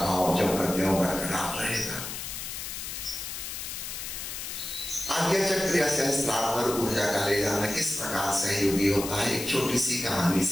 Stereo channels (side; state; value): left; noise; hiss, 7 dB below the sound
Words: भाव जो करते हो बरकरार रहेगा। आज्ञा चक्र या सहस्त्रार पर ऊर्जा का ले जाना किस प्रकार सहयोगी होता है, एक छोटी सी कहानी